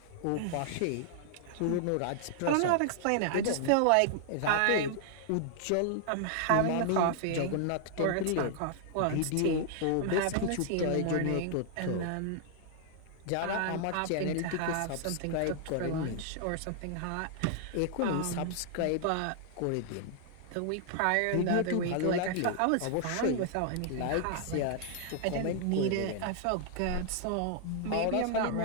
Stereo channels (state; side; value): different; both; correlation 0.00